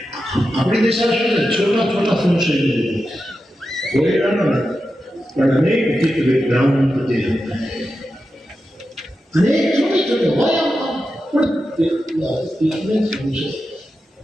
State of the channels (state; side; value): normal; both; correlation 0.90